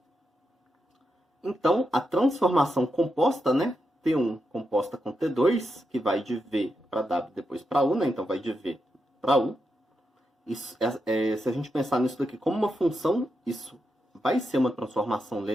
então a transformação composta, né, T1 composta com T2, que vai de V para W depois para U, né, então vai de V para U. Isso, se a gente pensar nisso daqui como uma função, isso vai ser uma transformação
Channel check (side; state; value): both; normal; correlation 0.85